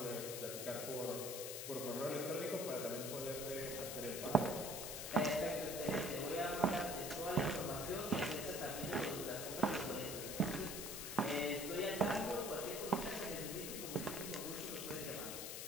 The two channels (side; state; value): left; noise; hiss, 5 dB below the sound